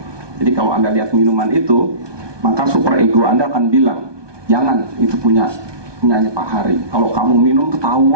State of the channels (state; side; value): late; left; 1.2 ms